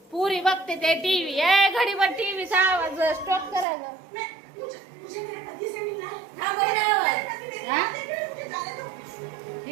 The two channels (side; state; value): left; drops out; at 3.7 s